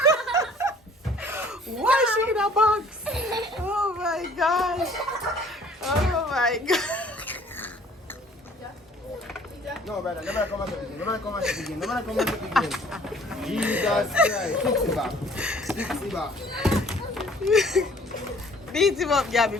Why is she in a box? Oh my gosh. Oh my god. No, brother, never come again. Never come again. Never come again. Jesus Christ. Fix it back. Fix it back. Beat him up, Gabby.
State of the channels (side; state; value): both; normal; correlation 0.55